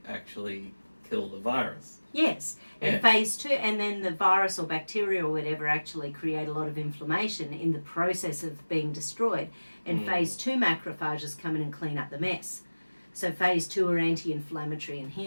actually kill the virus. Yes, and phase 2, and then the virus or bacteria or whatever actually create a lot of inflammation in the process of being destroyed. And phase 2 macrophages come in and clean up the mess. So phase 2 are anti-inflammatory and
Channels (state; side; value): inverted; both; correlation -1.00